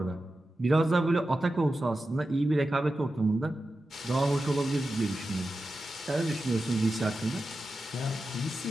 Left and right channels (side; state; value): both; normal; correlation 0.92